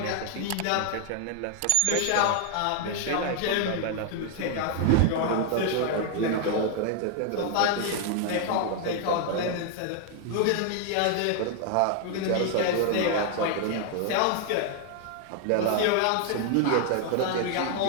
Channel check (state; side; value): different; both; correlation 0.00